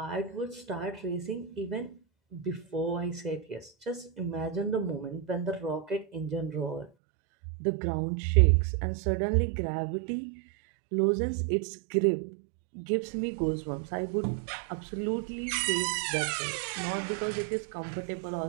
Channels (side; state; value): left; drops out; at 6.9 s